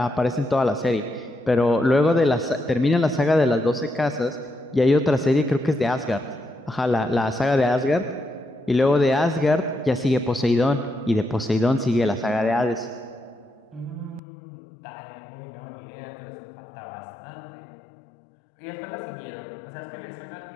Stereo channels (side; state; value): right; drops out; at 14.2 s